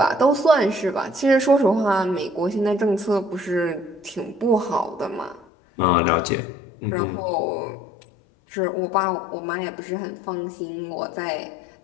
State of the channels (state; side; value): drops out; right; at 5.5 s